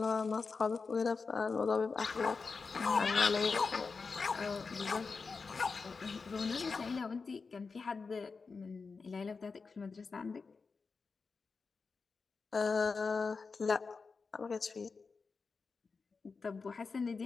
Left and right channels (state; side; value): quieter; right; 4.7 dB